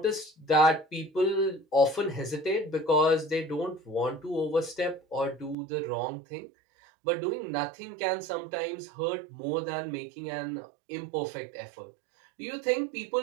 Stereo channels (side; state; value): left; drops out; at 5.6 s